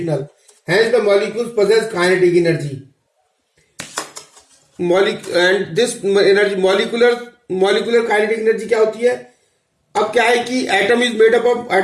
Hence the molecules possess kinetic energy. And this energy, molecular kinetic energy क्या होती है? अब क्या है कि atom is made up of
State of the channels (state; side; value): identical; both; correlation 1.00